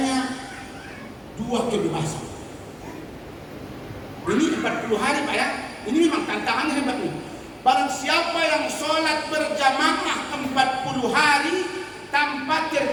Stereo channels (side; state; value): both; identical; correlation 1.00